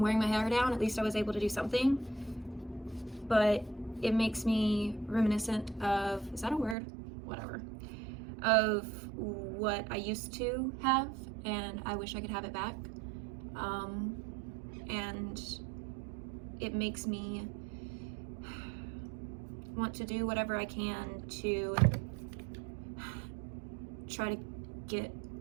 wearing my hair down. At least I was able to do something. But it makes me reminiscent of, is that a word? Whatever. Of what I used to have, and I wish I could have it back. And it makes me want to do whatever I can to try to get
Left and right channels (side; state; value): left; drops out; at 6.8 s